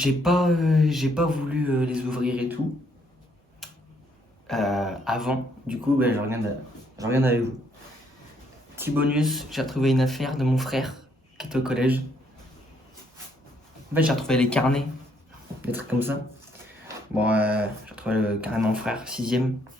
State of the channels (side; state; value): both; normal; correlation 0.70